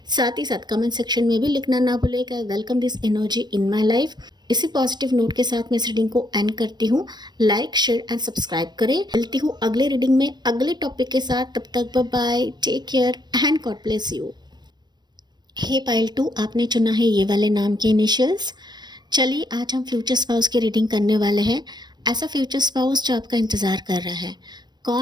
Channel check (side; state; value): left; late; 0.21 ms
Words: साथ ही साथ कमेंट सेक्शन में भी लिखना ना भूलेगा, welcome this energy in my life. इसी पॉजिटिव नोट के साथ मैं इस रीडिंग को एंड करती हूँ। लाइक, शेयर एंड सब्सक्राइब करें। मिलती हूँ अगले रीडिंग में अगले टॉपिक के साथ, तब तक bye bye, take care and God bless you. Hey pile 2, आपने चुना है ये वाले नाम के इनिशियल्स। चलिए आज हम फ्यूचर स्पाउस की रीडिंग करने वाले हैं। ऐसा फ्यूचर स्पाउस जो आपका इंतज़ार कर रहा है,